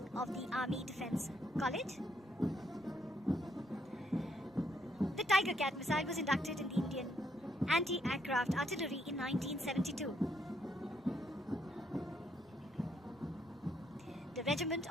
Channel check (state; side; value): normal; both; correlation 0.73